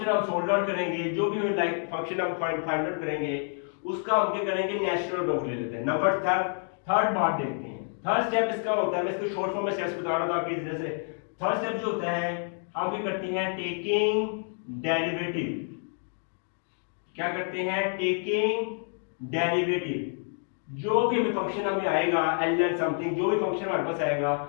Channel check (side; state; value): right; silent; 59 dB below the other